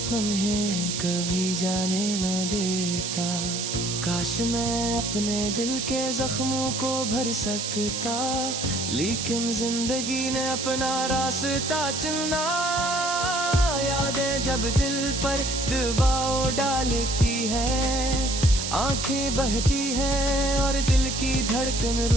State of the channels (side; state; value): right; noise; hiss, 3 dB below the sound